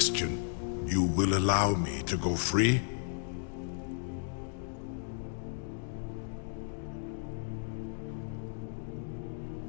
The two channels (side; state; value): right; silent; digital silence